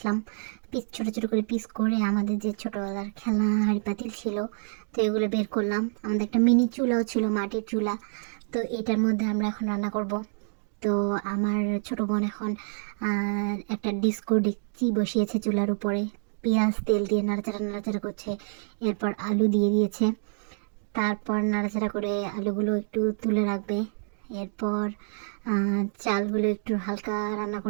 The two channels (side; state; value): left; silent; digital silence